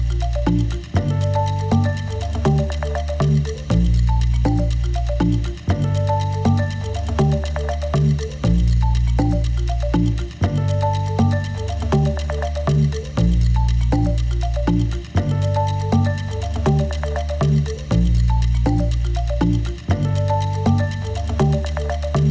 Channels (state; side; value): identical; both; correlation 1.00